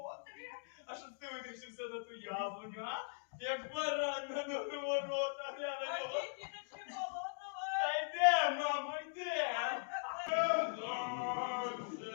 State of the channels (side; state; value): right; silent; digital silence